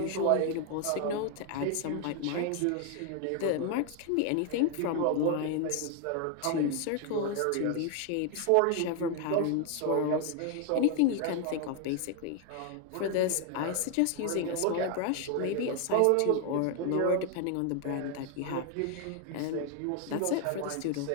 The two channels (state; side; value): different; both; correlation 0.01